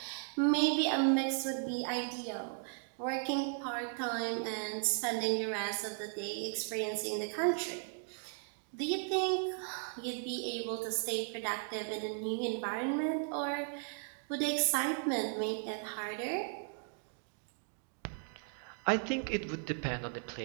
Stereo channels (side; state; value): left; silent; 54 dB below the other